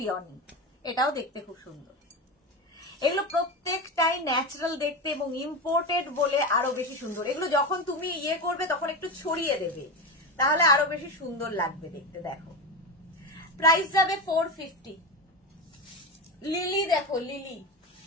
এটাও দেখতে খুব সুন্দর। এগুলো প্রত্যেকটাই ন্যাচারাল দেখতে এবং ইম্পোর্টেড বলে আরো বেশি সুন্দর। এগুলো যখন তুমি ইয়ে করবে তখন একটু ছড়িয়ে দেবে, তাহলে আরো বেশি সুন্দর লাগবে দেখতে। দেখো প্রাইস যাবে 450। লিলি দেখো, লিলি,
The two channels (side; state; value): both; normal; correlation 0.19